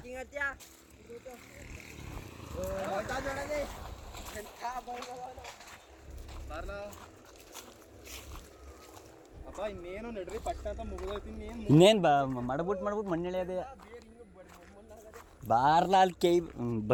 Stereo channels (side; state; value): both; identical; correlation 1.00